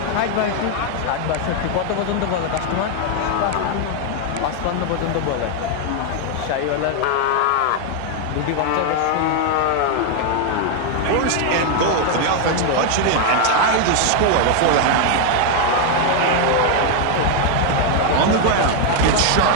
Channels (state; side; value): different; both; correlation 0.01